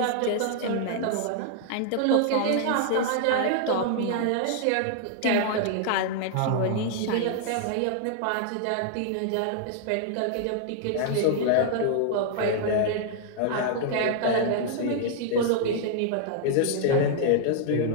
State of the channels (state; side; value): different; both; correlation 0.00